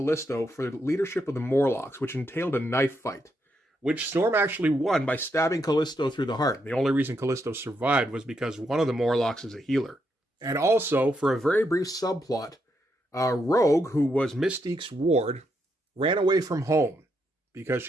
for the leadership of the Morlocks, which entailed a knife fight, which Storm actually won by stabbing Callisto through the heart. The only reason Callisto survived was because one of the Morlocks is a healer. And also, for a very brief subplot, Rogue, who was Mystique's ward, ran away from home because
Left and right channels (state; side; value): normal; both; correlation 0.80